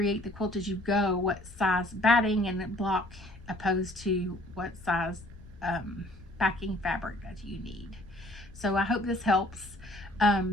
the Quilt As You Go, what size batting and block opposed to what size backing fabric that you need. So I hope this helps.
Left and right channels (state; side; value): noise; left; rumble, 19 dB below the sound